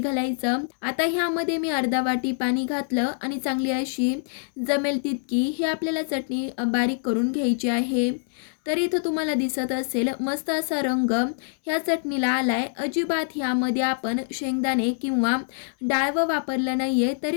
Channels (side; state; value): right; silent; 62 dB below the other